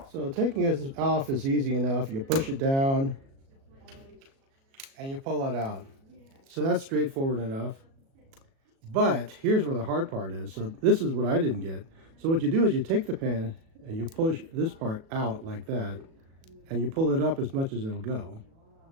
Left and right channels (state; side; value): late; left; 37 ms